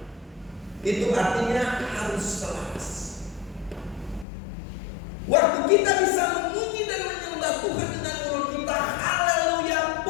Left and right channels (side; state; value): right; drops out; at 4.2 s